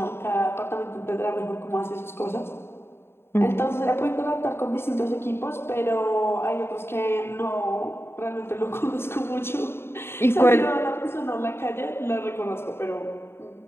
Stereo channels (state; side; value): late; right; 0.11 ms